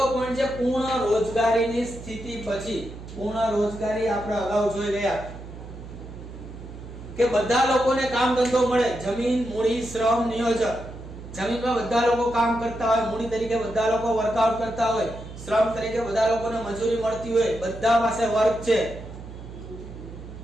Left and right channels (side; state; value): right; noise; hum, 13 dB below the sound